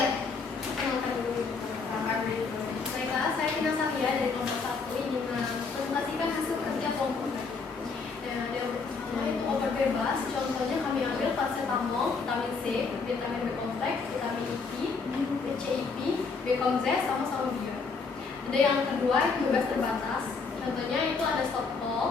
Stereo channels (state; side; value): quieter; right; 4.7 dB